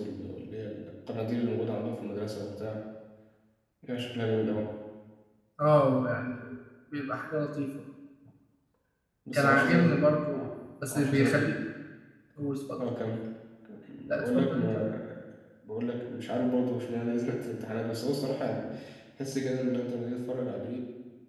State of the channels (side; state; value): both; identical; correlation 1.00